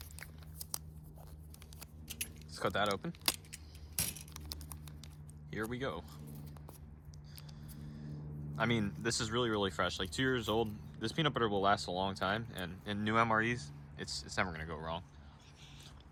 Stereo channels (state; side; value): identical; both; correlation 1.00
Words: Let's cut that open. Here we go. I mean, this is really, really fresh. Like 2 years old. This peanut butter will last a long time, and in new MREs, it's never gonna go wrong.